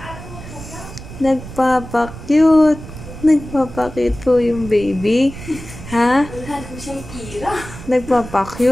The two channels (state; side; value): noise; right; rumble, 13 dB below the sound